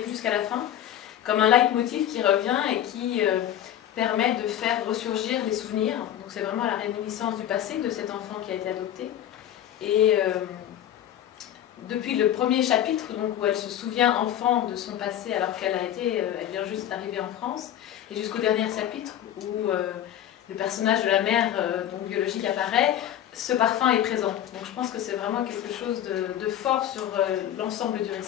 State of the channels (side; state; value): right; quieter; 11.2 dB